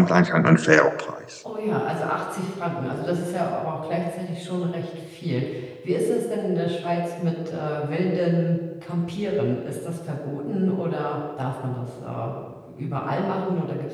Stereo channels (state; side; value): identical; both; correlation 1.00